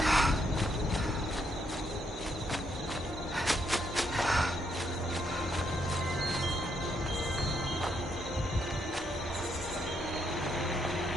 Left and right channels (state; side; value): normal; both; correlation 0.76